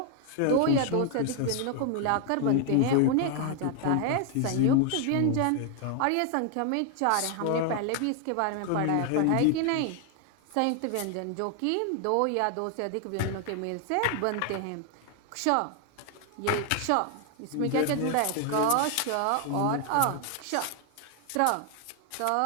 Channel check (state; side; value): different; both; correlation 0.00